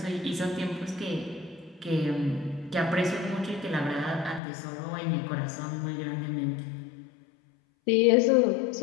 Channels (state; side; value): drops out; right; at 4.4 s